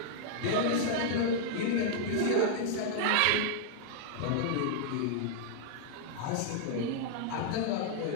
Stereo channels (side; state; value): both; different; correlation -0.01